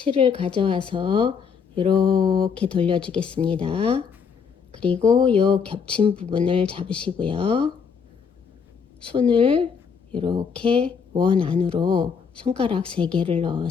가져와서 이렇게 돌려주겠습니다. 그리고 요 겹친 부분을 잡으시고요. 손을 이렇게 원 안으로 손가락 3개를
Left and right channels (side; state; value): right; quieter; 6.2 dB